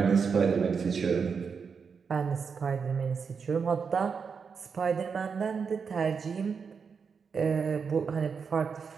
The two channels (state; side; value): quieter; left; 5.8 dB